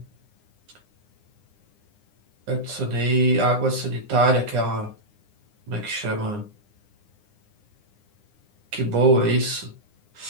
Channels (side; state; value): left; late; 9.8 ms